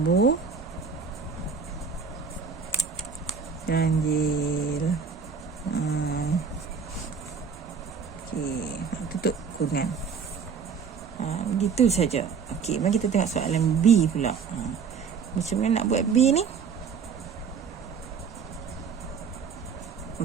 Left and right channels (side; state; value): left; quieter; 5.9 dB